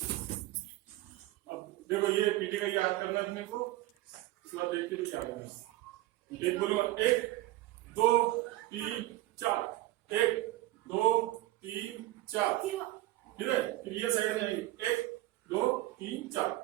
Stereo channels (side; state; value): left; quieter; 16.9 dB